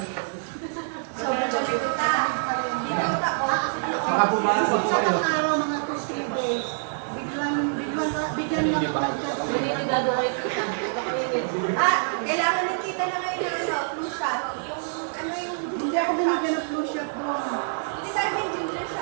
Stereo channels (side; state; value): left; silent; 61 dB below the other